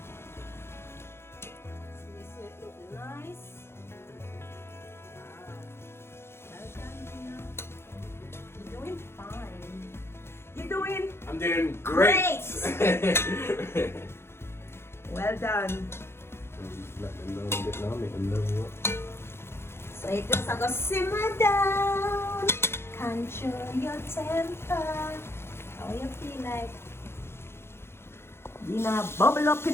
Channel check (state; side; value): late; right; 0.12 ms